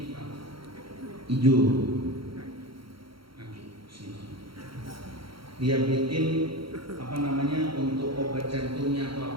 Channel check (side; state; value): left; late; 0.74 ms